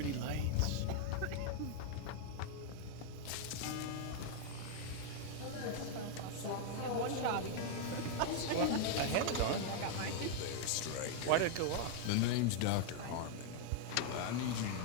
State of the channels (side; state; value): both; different; correlation 0.00